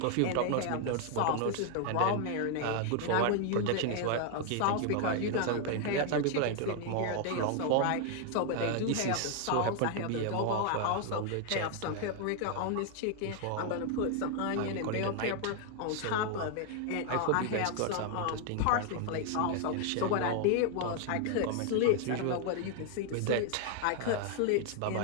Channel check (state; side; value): different; both; correlation 0.00